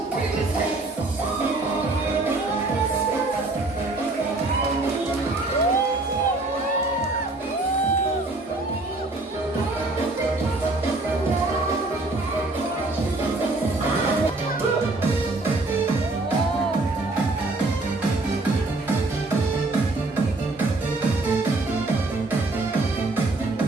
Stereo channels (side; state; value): left; quieter; 3.1 dB